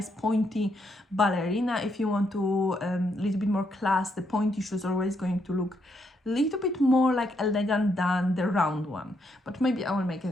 pointy ballerina if you want to a little bit more class. The pointy shoes are always going to look a little bit more like elegant than the round one, but maybe I will make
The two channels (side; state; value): both; normal; correlation 0.77